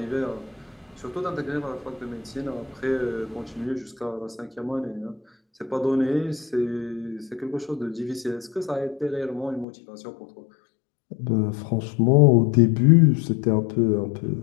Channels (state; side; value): drops out; right; at 9.7 s